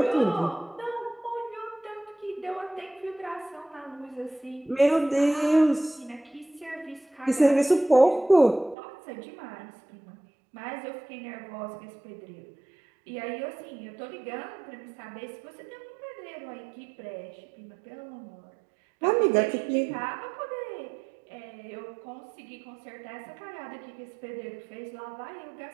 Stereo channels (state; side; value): drops out; left; at 8.8 s